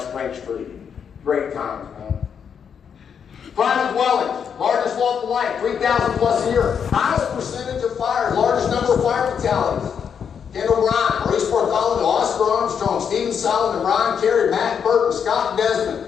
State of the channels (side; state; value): right; quieter; 7.3 dB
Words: Street. Great times, man. Private dwellings, largest lawful life, 3,000 plus a year. Highest percentage of fires, largest number of fire fatalities. Kendall Bryan, Maurice Bartholomew, Oscar Armstrong, Stephen Solomon, Brian Carey, Matt Burton, Scott